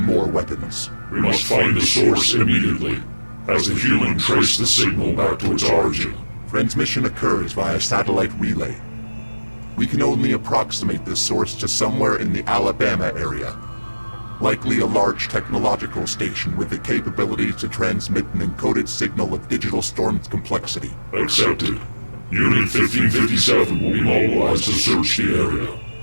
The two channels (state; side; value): inverted; both; correlation -1.00